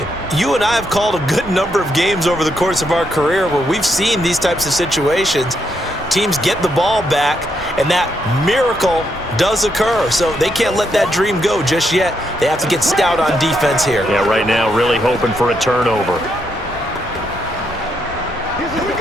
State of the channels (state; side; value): normal; both; correlation 0.78